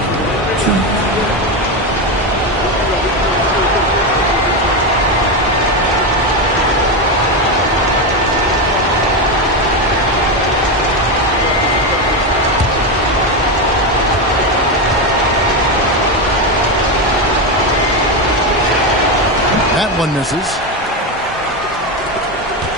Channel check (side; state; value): both; normal; correlation 0.12